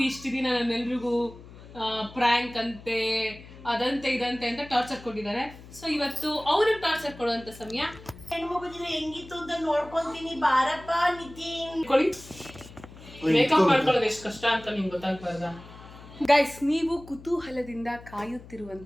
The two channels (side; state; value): left; noise; hum, 18 dB below the sound